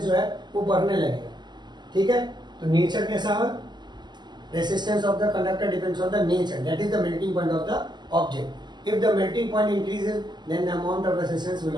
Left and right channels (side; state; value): left; late; 0.21 ms